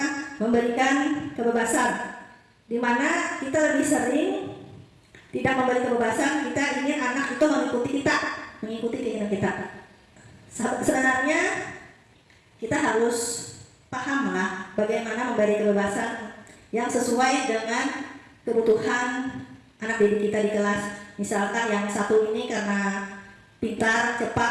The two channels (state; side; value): identical; both; correlation 1.00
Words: memberikan kebebasan, di mana kita lebih sering tidak memberi kebebasan, kita ingin anak itu mengikuti keinginan kita. Sebenarnya kita harus pahamlah bagaimana memberi kebebasan yang sesuai dengan kebutuhan anak didik kita di kelas. Misalkan yang satu ini karena pintar,